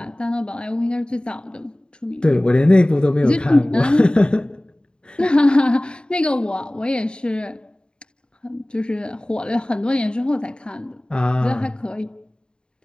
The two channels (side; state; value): right; late; 0.050 ms